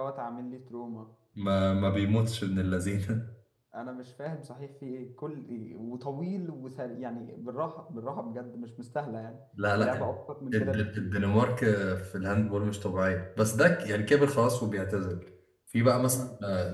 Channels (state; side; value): identical; both; correlation 1.00